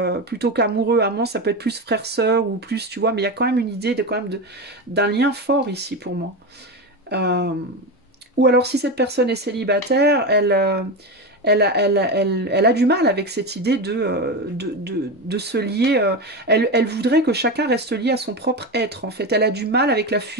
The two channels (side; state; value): both; normal; correlation 0.18